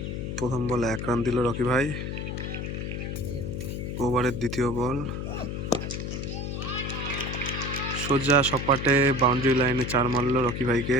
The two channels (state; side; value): noise; left; hum, 4 dB below the sound